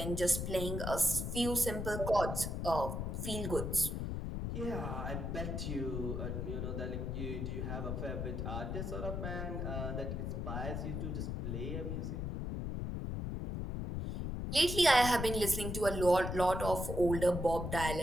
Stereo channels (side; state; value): left; noise; rumble, 3 dB below the sound